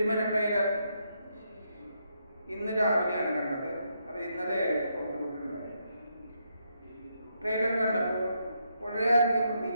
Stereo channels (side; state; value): both; inverted; correlation -0.78